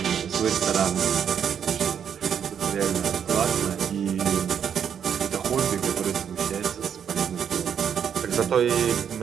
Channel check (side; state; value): left; quieter; 8.1 dB